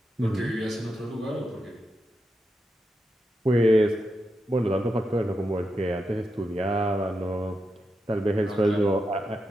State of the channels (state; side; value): normal; both; correlation 0.87